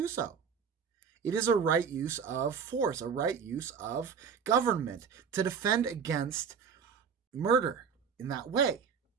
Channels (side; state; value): left; quieter; 6.6 dB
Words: so. It is a right use of force, a right use of government to defend against murder in that way.